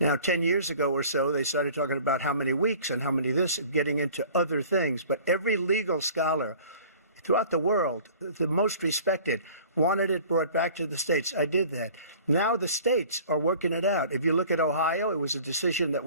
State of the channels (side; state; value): both; inverted; correlation -0.47